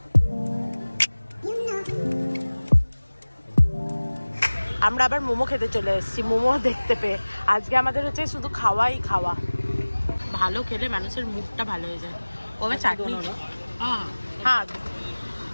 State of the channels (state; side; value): inverted; both; correlation -1.00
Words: আমরা আবার মোমো খেতে চলে এসেছি, মোমো দেখতে পেয়ে। আজকে আমাদের হচ্ছে শুধু খাওয়াই খাওয়া। ভালো খেলে মানুষের মুখটা ভালো হয়ে যায়। ওভাবে চাটনি, হ্যাঁ